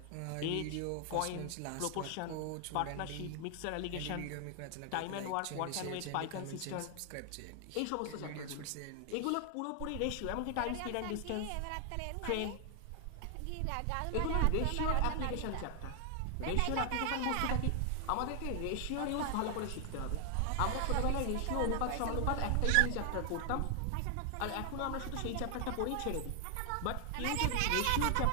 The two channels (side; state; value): both; different; correlation 0.00